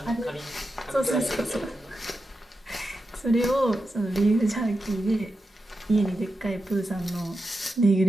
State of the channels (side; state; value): both; normal; correlation 0.89